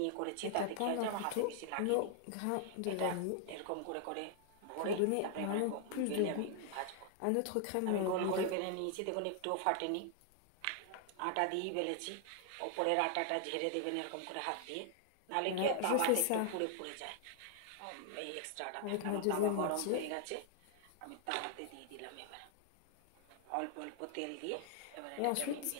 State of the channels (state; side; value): different; both; correlation 0.00